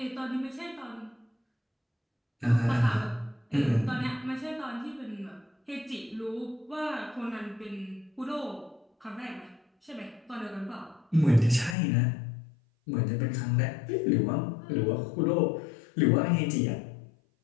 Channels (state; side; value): drops out; right; at 11.8 s